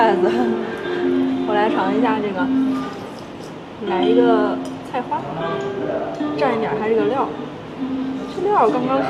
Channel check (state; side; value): identical; both; correlation 1.00